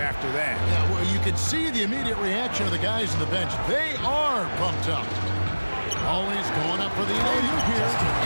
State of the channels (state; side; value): inverted; both; correlation -1.00